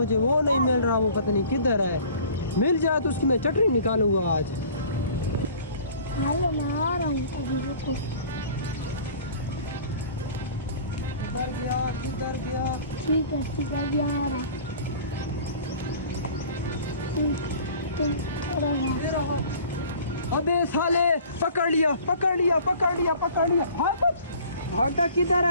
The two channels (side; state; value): both; inverted; correlation -0.47